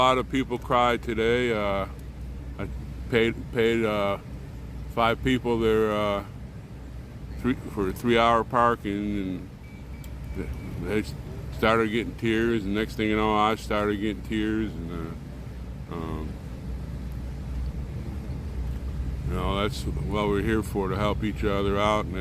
of people cry today. I paid 5 people their for 3-hour parking, and they started getting tears. And next thing you know, I started getting tears. And that's what we're here for, to help each other out. And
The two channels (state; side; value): identical; both; correlation 1.00